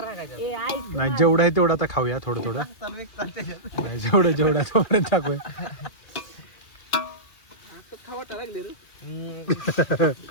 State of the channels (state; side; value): late; right; 2.3 ms